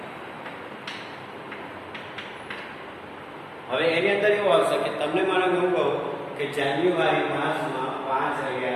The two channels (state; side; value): identical; both; correlation 1.00